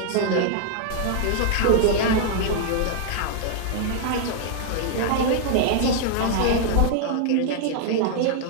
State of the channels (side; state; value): both; different; correlation 0.00